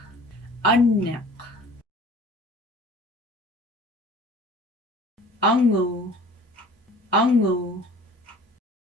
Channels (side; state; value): both; normal; correlation 0.46